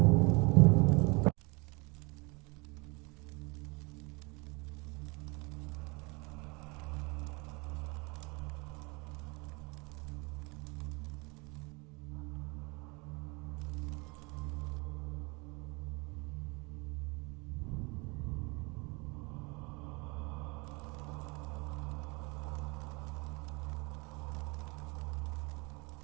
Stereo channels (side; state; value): left; quieter; 28.3 dB